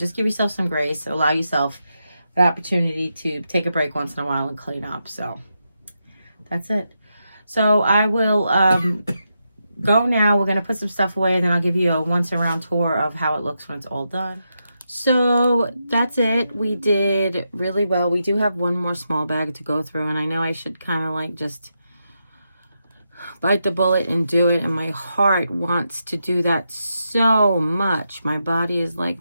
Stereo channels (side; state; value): both; inverted; correlation -0.85